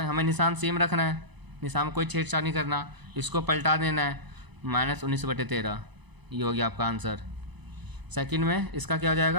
हमें निशान सेम रखना है, निशान में कोई छेड़छाड़ नहीं करना, इसको पलटा देना है, -19/13। ये हो गया आपका आंसर। सेकंड में इसका क्या हो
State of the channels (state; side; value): late; left; 1.0 ms